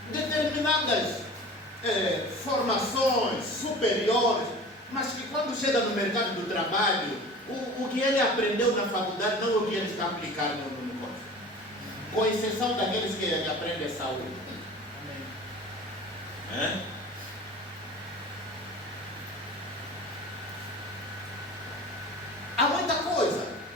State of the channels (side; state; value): both; normal; correlation 0.39